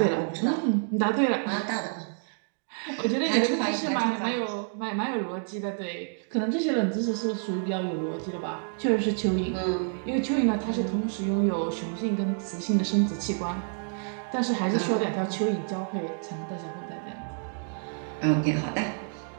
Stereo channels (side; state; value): left; silent; 59 dB below the other